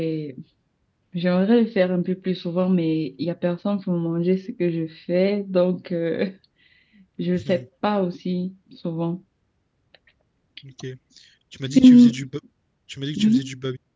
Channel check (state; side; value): identical; both; correlation 1.00